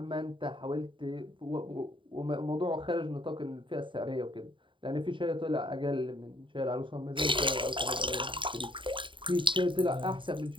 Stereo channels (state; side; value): late; left; 0.24 ms